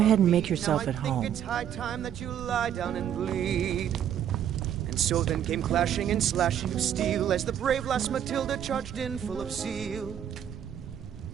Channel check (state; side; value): quieter; left; 9.8 dB